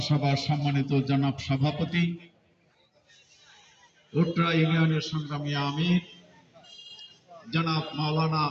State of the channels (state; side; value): identical; both; correlation 1.00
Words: সভার সম্মানিত জনাব সভাপতি ভোটরা ইউনিয়নের সংগ্রামী আমির জনাব মাওলানা